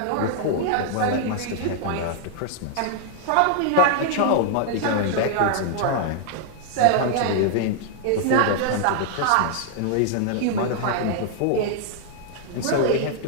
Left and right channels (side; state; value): both; different; correlation -0.01